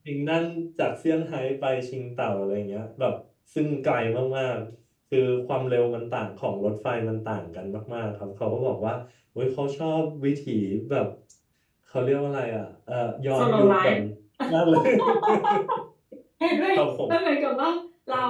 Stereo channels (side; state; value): both; identical; correlation 1.00